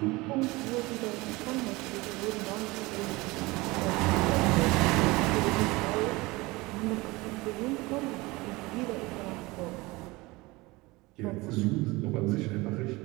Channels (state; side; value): quieter; left; 22.4 dB